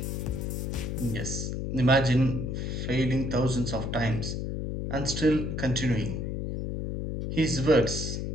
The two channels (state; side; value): noise; left; hum, 3 dB below the sound